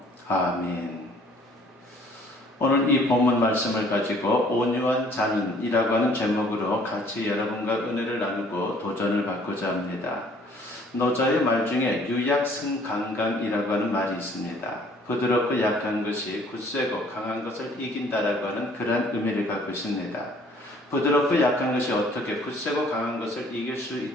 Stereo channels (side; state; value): both; normal; correlation 0.57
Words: 아멘. 오늘 이 본문 말씀을 가지고 온유한 자는 이라고 하는 제목으로 같이 여러분과 은혜를 나누고 도전을 받고자 합니다. 노자의 말 중에 유약승강강이라고 하는 말이 있습니다. 부드럽고 약한 것이 굳세고 강한 것을 이긴다라고 하는 그런 의미를 갖고 있습니다. 부드럽고 약한 것이 어떻게 굳세고 강한 것을 이길 수